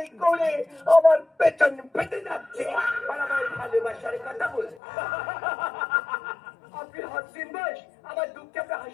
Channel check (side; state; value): right; drops out; at 4.8 s